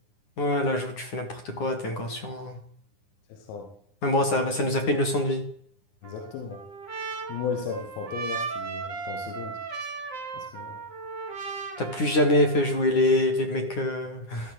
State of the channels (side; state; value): right; late; 9.8 ms